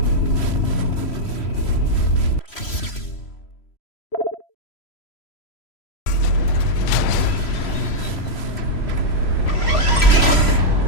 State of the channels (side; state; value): right; late; 3.0 ms